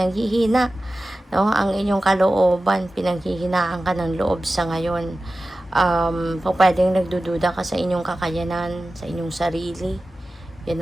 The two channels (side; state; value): both; normal; correlation 0.95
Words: No? Ang inyong kalooban, pinanghihinaan ka ng loob sa ngayon. Pwedeng nagdududa ka sa inyong kakayanan, sa inyong sarili,